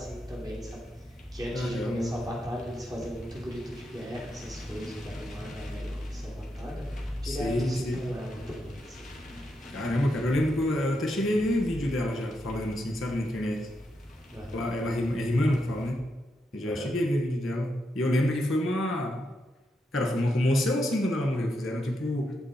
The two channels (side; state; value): both; normal; correlation 0.83